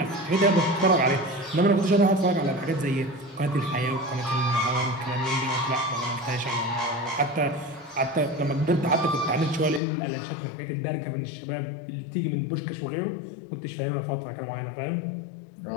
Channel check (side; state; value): right; drops out; at 9.8 s